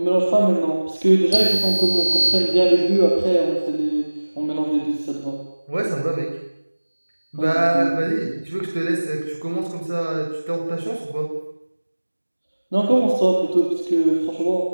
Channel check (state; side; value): inverted; both; correlation -1.00